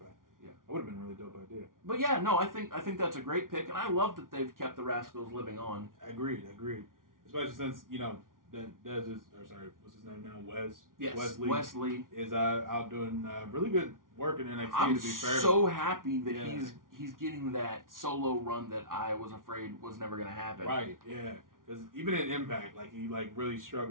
Yeah, that would have been a really dope idea. But yeah, no, I think that's a great pick, and I love that they've kept the Rascals living on. Agreed. Especially since Dez is, what's his name now? Wes. Yes, Wesley is out doing really good work in NXT. I'm to be fair, so happy that he's getting that solo run that I was afraid was never going to happen. Right. Yeah. Because even in Impact, like he really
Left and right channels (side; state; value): left; late; 0.89 ms